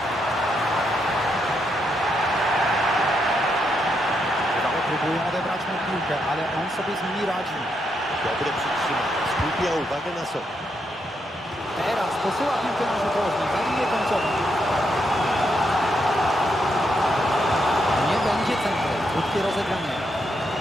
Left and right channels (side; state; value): both; normal; correlation 0.80